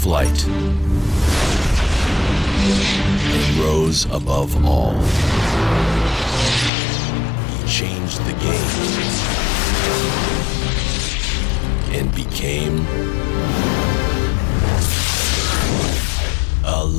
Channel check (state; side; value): drops out; right; at 6.7 s